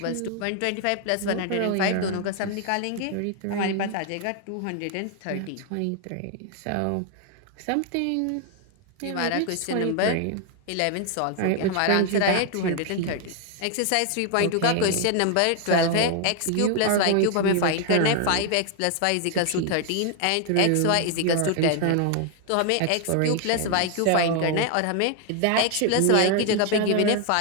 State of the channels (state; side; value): different; both; correlation 0.00